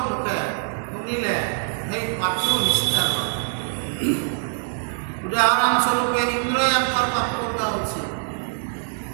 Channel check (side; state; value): left; silent; 60 dB below the other